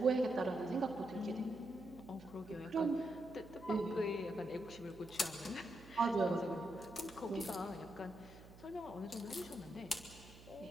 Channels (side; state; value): right; noise; hum, 18 dB below the sound